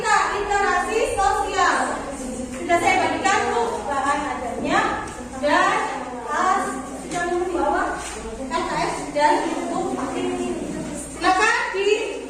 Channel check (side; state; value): both; identical; correlation 1.00